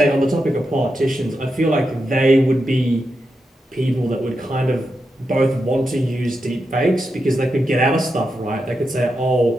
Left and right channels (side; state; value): both; normal; correlation 0.87